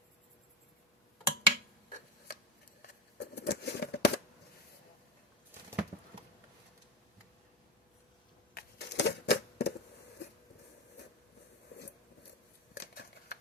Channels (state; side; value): normal; both; correlation 0.20